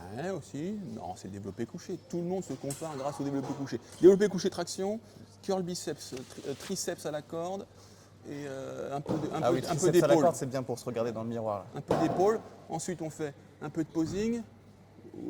Ouais, aussi. Non, c'est le développé couché. Tout le monde se compare grâce au développé couché. Développé couché traction, curl biceps, triceps à la corde et un peu Ah oui, un peu triceps à la d'épaule. corde, c'est bien pour se regarder dans le miroir. Là. Un peu d'épaule. Ensuite, on fait un peu de posing.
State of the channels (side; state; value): both; identical; correlation 1.00